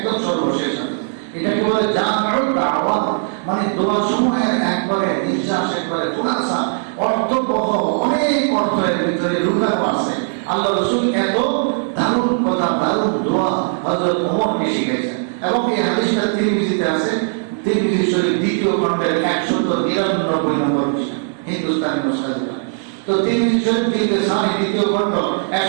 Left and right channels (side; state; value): left; silent; digital silence